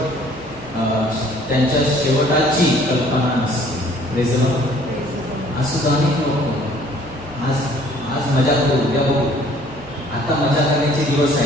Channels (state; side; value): normal; both; correlation 0.57